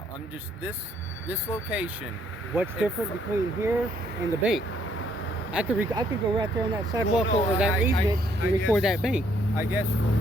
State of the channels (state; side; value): normal; both; correlation 0.68